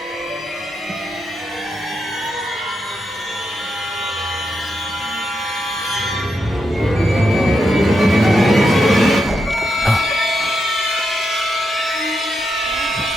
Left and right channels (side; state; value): both; normal; correlation 0.84